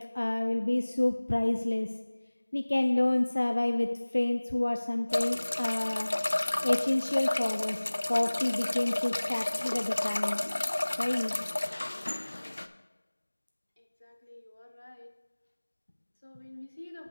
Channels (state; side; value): inverted; both; correlation -1.00